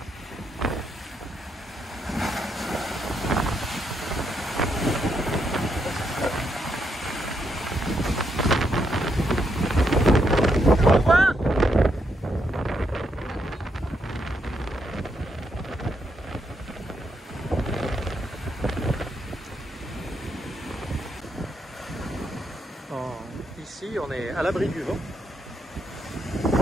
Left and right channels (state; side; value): normal; both; correlation 0.79